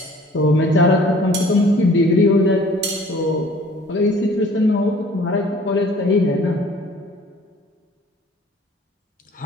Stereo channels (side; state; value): both; normal; correlation 0.52